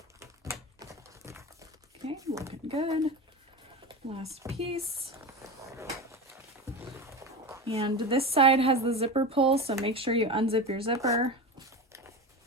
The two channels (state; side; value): normal; both; correlation 0.24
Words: Okay, looking good. Last piece. And this side has the zipper pull, so make sure you unzip your zipper.